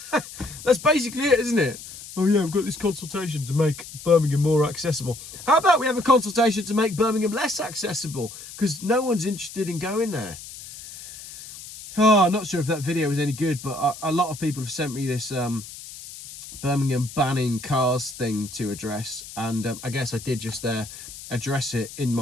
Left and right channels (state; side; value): noise; left; hiss, 14 dB below the sound